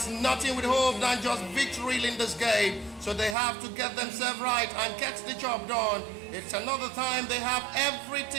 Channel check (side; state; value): left; drops out; at 3.4 s